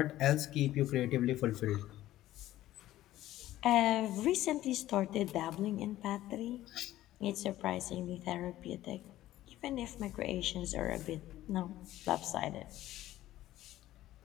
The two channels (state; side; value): quieter; right; 14.6 dB